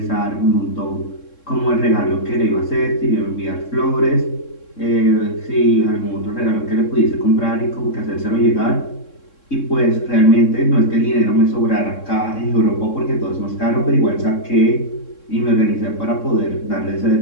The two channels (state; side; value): late; right; 3.6 ms